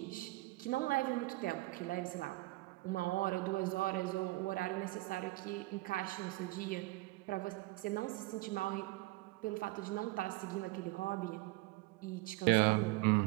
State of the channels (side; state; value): left; quieter; 21.2 dB